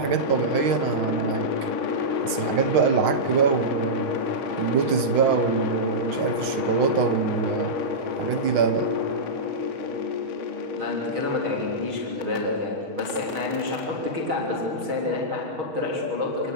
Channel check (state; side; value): late; left; 7.1 ms